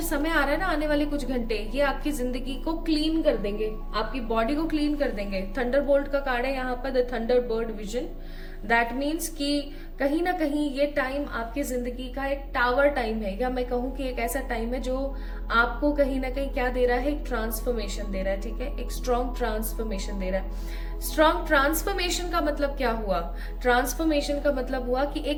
समय आ रहा है ना आने वाले कुछ घंटे, ये आपकी जिंदगी को क्लीन कर देंगे, आपकी बॉडी को क्लीन कर देंगे। थंडरबोल्ट का कार्ड है यहाँ पर, the Thunderbird vision. That means कि कहीं ना कहीं ये टाइम आपकी जिंदगी का एक टावर टाइम है, या मैं कहूँ कि एक ऐसा टाइम है जो आपको कहीं ना कहीं क्या दे रहा है, एक ट्रांसफॉर्मेशन दे रहा है, ठीक है, एक स्ट्रॉन्ग ट्रांसफॉर्मेशन दे रहा है। स्ट्रॉन्ग ट्रांसफॉर्मेशन का मतलब क्या हुआ? ट्रांसफॉर्मेशन का मतलब हुआ कि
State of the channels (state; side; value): identical; both; correlation 1.00